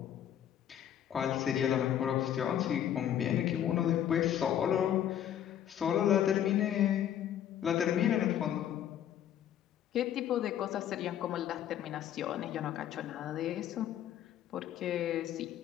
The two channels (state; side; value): quieter; right; 10.5 dB